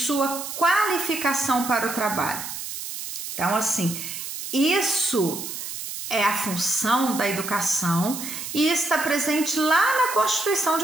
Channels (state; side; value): noise; right; hiss, 7 dB below the sound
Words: qualificação para o trabalho. Então, assim, isso é a função da educação e está presente lá na Constituição